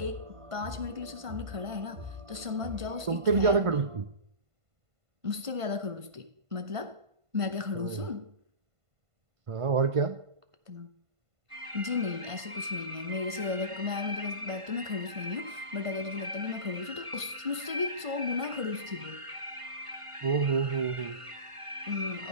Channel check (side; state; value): left; late; 1.5 ms